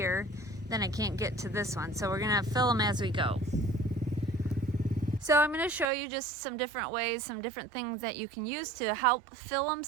then I can't get to this one, so we're gonna fill them as we go. So I'm going to show you just some different ways, some different things that you can use to help fill them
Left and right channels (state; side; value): drops out; left; at 5.9 s